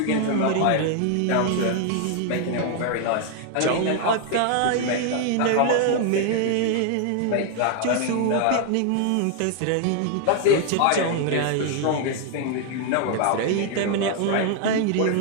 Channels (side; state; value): both; different; correlation 0.00